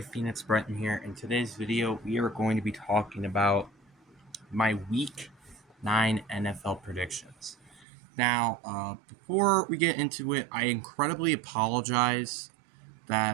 Phoenix Breton here. In today's video, we are going to be talking about my Week 9 NFL predictions. Now, before we get into it, I incredibly apologize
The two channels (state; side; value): drops out; left; at 7.9 s